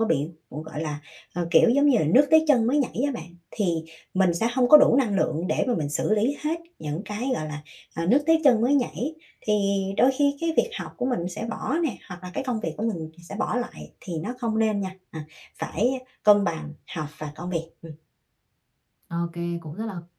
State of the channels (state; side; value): identical; both; correlation 1.00